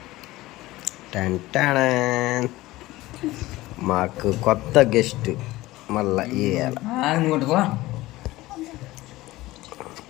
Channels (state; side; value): quieter; right; 18.2 dB